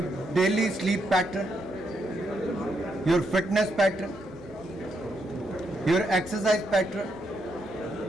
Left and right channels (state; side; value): normal; both; correlation 0.79